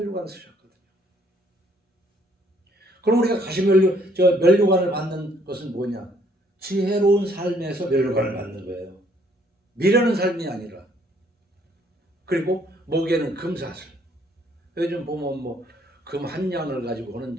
쓰셨거든요. 그럼 우리가 면류관을 받는 것은 뭐냐? 지혜로운 삶에서 면류관을 받는 거예요. 미련한 삶이 아니라. 그리고 목에는 금사슬. 요즘 보면 뭐 금 한 양을 가지고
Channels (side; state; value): both; normal; correlation 0.65